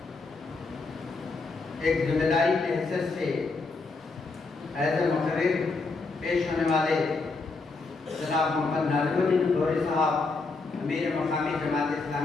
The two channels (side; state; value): right; quieter; 3.9 dB